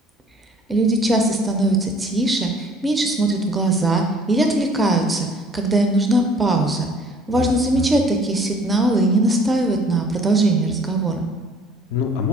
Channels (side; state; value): both; normal; correlation 0.55